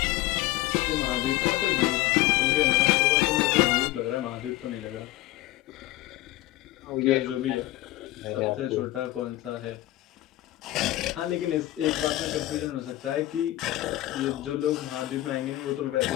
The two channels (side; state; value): right; quieter; 16.6 dB